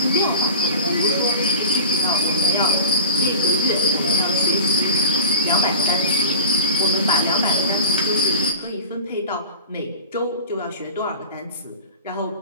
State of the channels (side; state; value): both; inverted; correlation -0.33